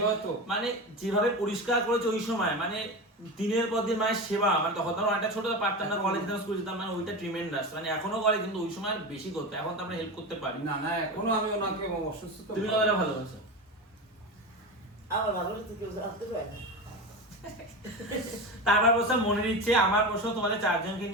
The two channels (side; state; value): both; normal; correlation 0.24